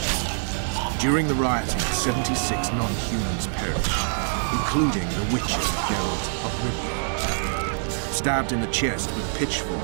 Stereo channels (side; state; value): left; silent; 62 dB below the other